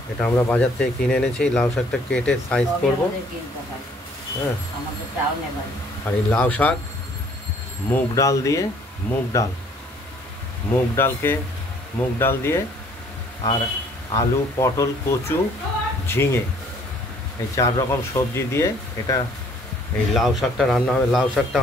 এটা আমরা বাজার থেকে কিনে এনেছি। লাউ শাকটা কেটে সাইজ করব। হ্যাঁ, আর এই লাউ শাক মুগ ডাল দিয়ে, মুগ ডাল দিয়ে আর আলু, পটল, কচু, ঝিঙে, এই 4 রকম সবজি দিয়ে এটা এই লাউ শাকটা রান্না হবে। লাউ শাকটা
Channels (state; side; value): normal; both; correlation 0.59